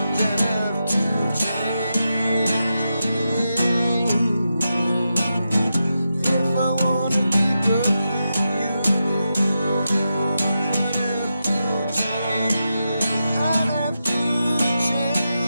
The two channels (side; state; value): both; inverted; correlation -0.88